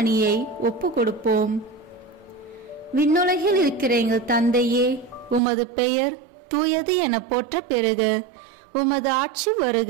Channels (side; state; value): left; drops out; at 5.4 s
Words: ஒப்பு கொடுப்போம். விண்ணுலகில் இருக்கிற எங்கள் தந்தையே, உமது பெயர் தூயது என போற்ற பெறுக. உமது ஆட்சி